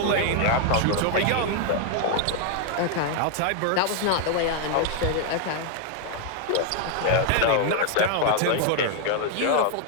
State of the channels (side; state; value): both; different; correlation 0.00